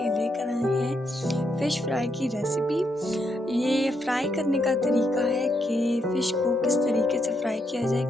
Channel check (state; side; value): normal; both; correlation 0.79